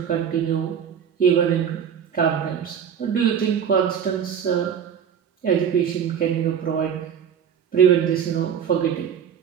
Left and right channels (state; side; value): quieter; left; 8.1 dB